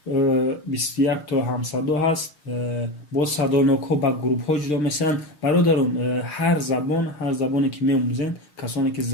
21 تا همصدا هست. با صدانک ها با گروپ ها جدا میشن. برادران هر زبانی که می‌آموزین، کسانی که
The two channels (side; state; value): right; late; 6.4 ms